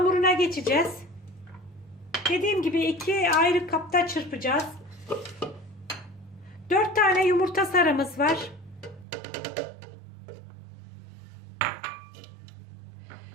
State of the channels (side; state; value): left; drops out; at 9.1 s